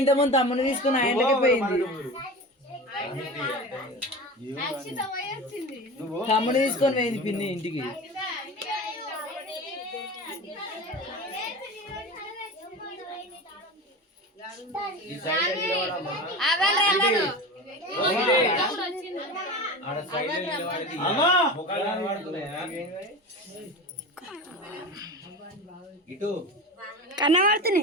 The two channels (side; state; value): both; normal; correlation 0.30